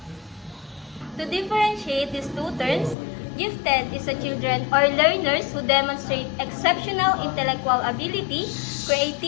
To differentiate these two terms, gifted is a children or learners who demonstrate exceptional intellectual ability,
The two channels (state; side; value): drops out; right; at 3.0 s